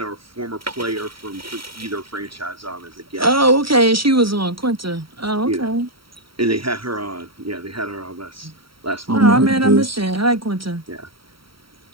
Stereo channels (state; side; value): late; left; 0.75 ms